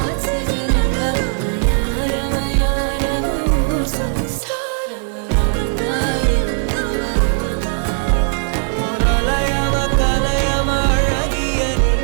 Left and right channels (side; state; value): left; silent; 56 dB below the other